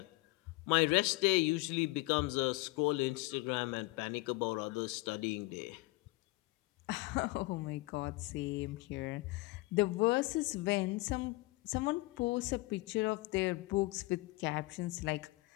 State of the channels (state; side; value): quieter; right; 22.4 dB